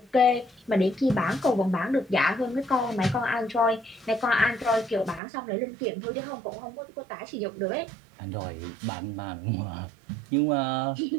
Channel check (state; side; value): drops out; left; at 5.2 s